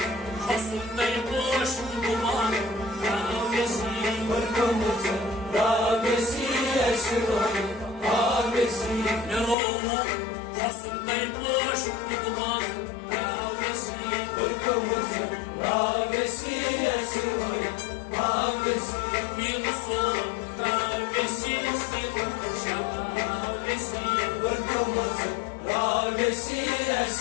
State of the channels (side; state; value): right; drops out; at 9.6 s